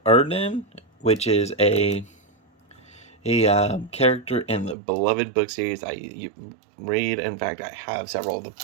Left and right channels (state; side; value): drops out; left; at 4.8 s